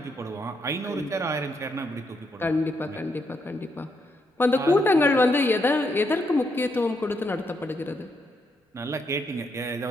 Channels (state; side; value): normal; both; correlation 0.78